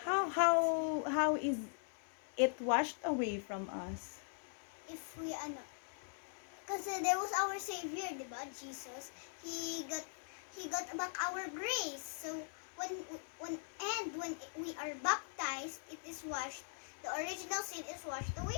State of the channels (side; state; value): right; silent; 50 dB below the other